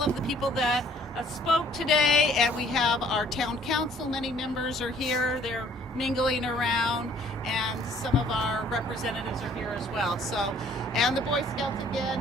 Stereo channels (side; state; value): both; normal; correlation 0.59